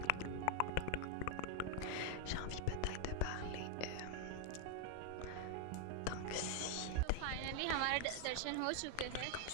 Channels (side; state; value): both; different; correlation 0.00